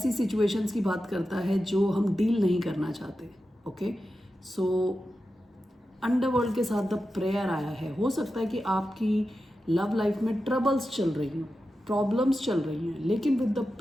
सिचुएशंस की बात करता है जो हम डील नहीं करना चाहते। ओके, सो अंडरवर्ल्ड के साथ द प्रेयर आया है। हो सकता है कि आपकी लव लाइफ में ट्रबल्स चल रही हों, प्रॉब्लम्स चल रही हैं, लेकिन विद द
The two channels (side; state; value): both; normal; correlation 0.91